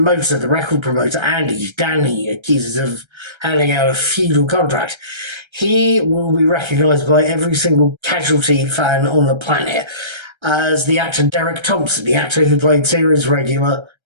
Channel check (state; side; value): late; left; 1.3 ms